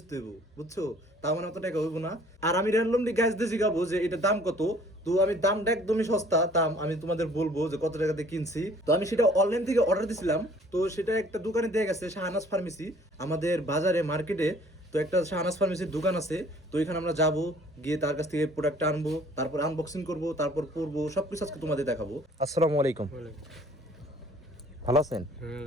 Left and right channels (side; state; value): both; normal; correlation 0.55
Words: হইব, বুঝছো? তার মানে অত টাকা হইব না। আর আমি র্যান্ডমলি গাইজ দিয়ে জিগাবো যে এটা দাম কত। তো আমি দামটা একদমই সস্তা, দাম আমি তোমাদের বলবো যে কত টাকাতে কিনছি। তো আমি সেটা অনলাইন থেকে অর্ডার দিছিলাম। তো সেটা একটা দোকানে দিয়ে গেছে, শাহনাজ ফার্মেসি, আমাদের বাজারে মার্কেটে। তো একটা শাহনাজ ফার্মেসির দোকান আছে। তো এখানে আমরা যাব, গিয়ে তার কাছ থেকে প্রোডাক্টটা আনবো, তারপর আনবক্সিং করব, তারপর পরবো, সবকিছু আজকে তোমাদের দেখাবো। আসসালামু আলাইকুম, ভালো আছেন?